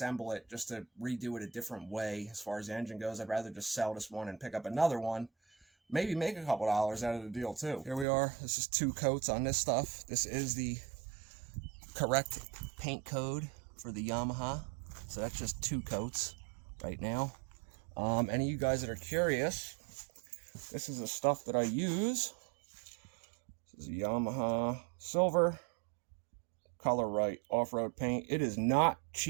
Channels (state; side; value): drops out; left; at 8.1 s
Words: it just to redo it a different way as far as the engine goes. I'd rather just sell this one and pick up another one. Maybe make a couple dollars out of the deal too. Here we are. This is 2 coats on this stuff. This is the correct paint code for the Yamaha. So that's just 2 coats right now. Any of you guys that are curious, this is the stuff that I use. This is a Yamaha silver color right off-road paint. It is not